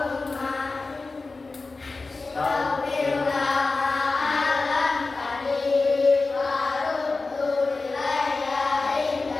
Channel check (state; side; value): quieter; right; 3.8 dB